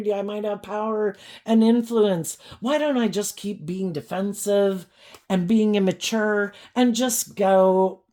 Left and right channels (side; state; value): both; identical; correlation 1.00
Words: I might have power and influence. Why don't I just keep being defensive and being immature and just go,